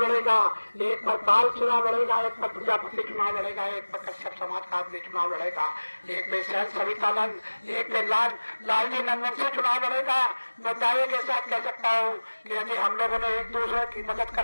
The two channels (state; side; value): inverted; both; correlation -1.00